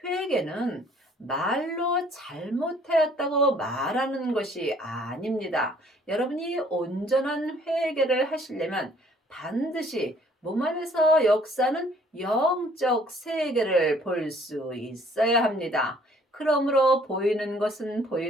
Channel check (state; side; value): normal; both; correlation 0.59